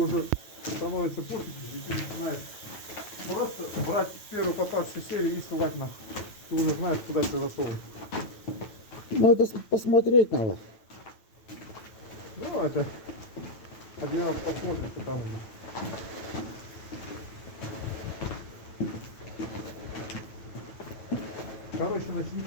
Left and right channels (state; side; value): late; right; 9.1 ms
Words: становится пофиг, и ты начинаешь просто брать первую попавшую серию и ссылать на. Ты уже знаешь, куда тебе засовывать. Ну, это посмотреть надо. Ну, это один раз посмотрим, потому что. Короче,